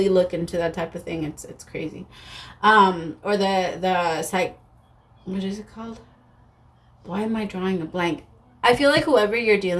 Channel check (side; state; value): both; identical; correlation 1.00